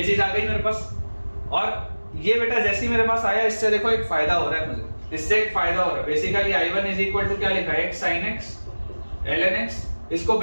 चीज आ गई मेरे पास। और ये बेटा जैसे ही मेरे पास आया, इससे देखो एक फायदा हो रहा है मुझे, इससे एक फायदा हो रहा है। Basically I1 is equal to क्या लिखा है, x sin x ln x, इसको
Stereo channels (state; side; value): inverted; both; correlation -1.00